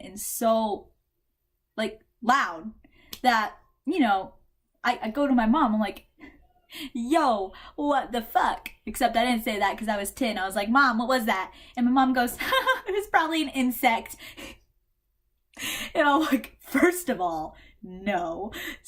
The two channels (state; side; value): identical; both; correlation 1.00